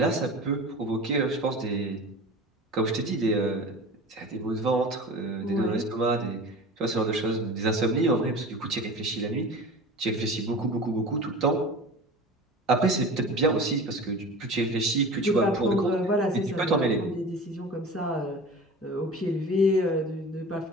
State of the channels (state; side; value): normal; both; correlation 0.36